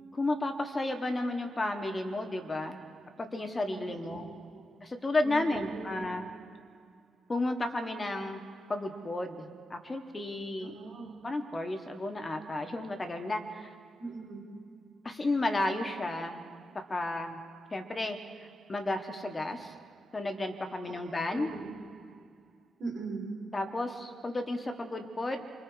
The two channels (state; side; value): normal; both; correlation 0.90